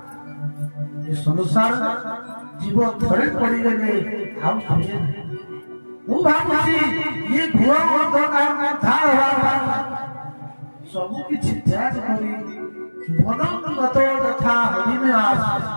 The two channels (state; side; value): inverted; both; correlation -1.00